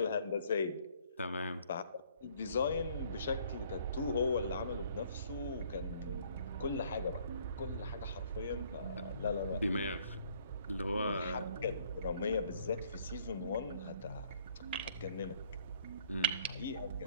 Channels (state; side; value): inverted; both; correlation -0.60